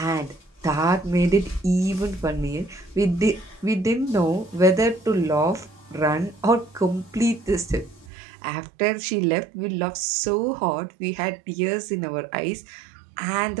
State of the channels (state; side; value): drops out; left; at 8.1 s